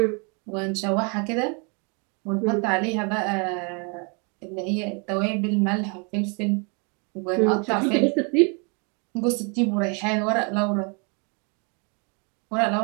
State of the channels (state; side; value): quieter; left; 34.6 dB